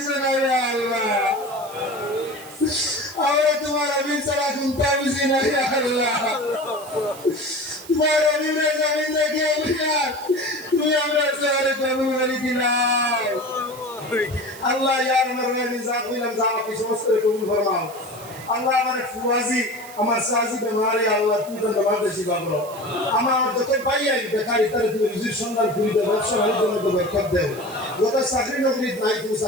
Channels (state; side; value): noise; right; hiss, 18 dB below the sound